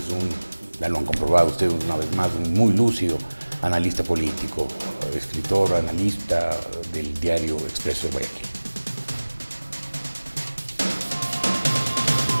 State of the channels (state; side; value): inverted; both; correlation -1.00